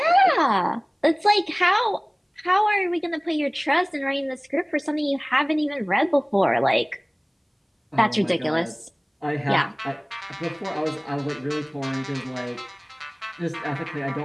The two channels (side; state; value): both; identical; correlation 1.00